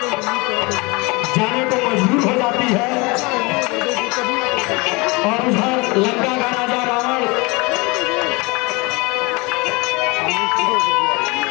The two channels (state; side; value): quieter; right; 26.2 dB